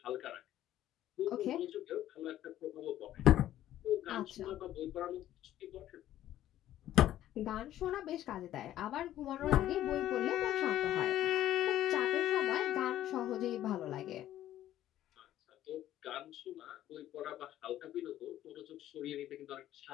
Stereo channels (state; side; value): quieter; right; 12.8 dB